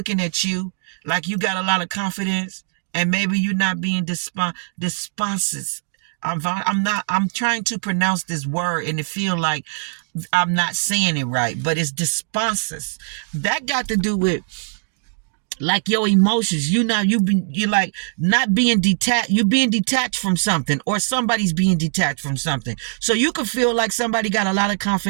at you like you got a lot of confidence, and maybe you're not being desponses. I'm trying to pronounce this word, and it feel like I'm not saying it right, but it's desponses. That got to do with like your emotions. You're like not being detached. You're being detached from something, or somebody's being detached from something. So you could feel like somebody got a lot of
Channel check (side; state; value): left; silent; digital silence